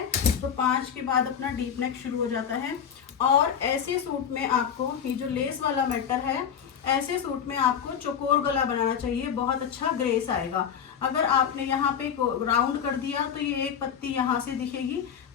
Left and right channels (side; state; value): right; quieter; 8.0 dB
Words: तो 5 के बाद अपना डीप नेक शुरू हो जाता है। और ऐसे सूट में आपको, ये जो लेस वाला मैटर है, ऐसे सूट में आपको चौकोर गला बनाना चाहिए, बहुत अच्छा ग्रेस आएगा। अगर आपने यहाँ पे राउंड कर दिया तो ये एक पत्ती यहाँ से दिखेगी,